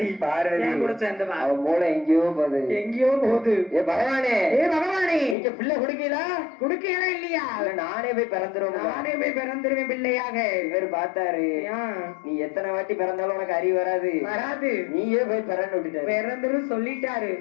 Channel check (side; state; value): right; drops out; at 5.4 s